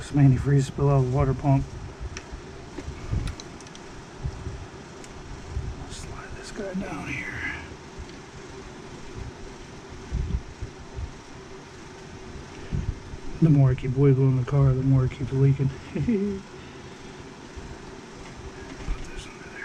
antifreeze spill out of the water pump. Slide this guy down here. The more I keep wiggling the car, the more it keeps leaking.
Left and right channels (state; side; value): identical; both; correlation 1.00